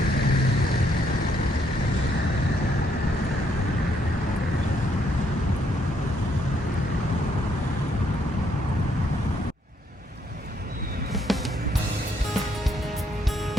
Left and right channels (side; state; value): both; normal; correlation 0.72